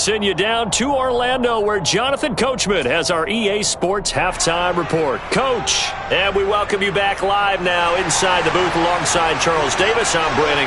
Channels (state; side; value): identical; both; correlation 1.00